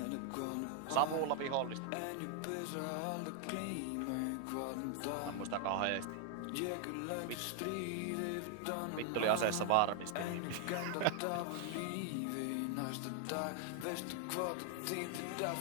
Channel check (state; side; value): different; both; correlation 0.00